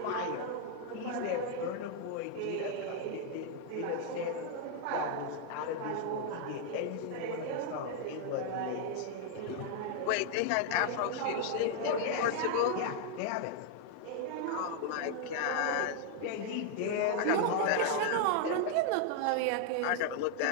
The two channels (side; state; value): both; different; correlation 0.00